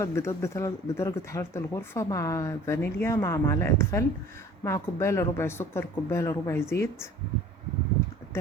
بيضات بدرجة حرارة الغرفة، مع فانيليا، مع معلقة خل، مع كوباية الا ربع سكر، كوباية الا ربع زيت،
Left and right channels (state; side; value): normal; both; correlation 0.48